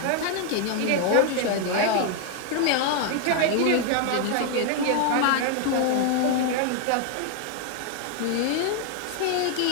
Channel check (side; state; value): both; different; correlation 0.00